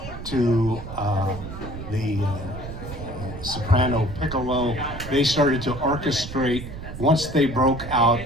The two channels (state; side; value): noise; right; rumble, 10 dB below the sound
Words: to the soprano piccolo. They started to orchestrate once they broke out